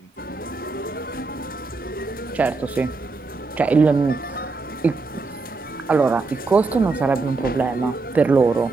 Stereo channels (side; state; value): left; quieter; 3.8 dB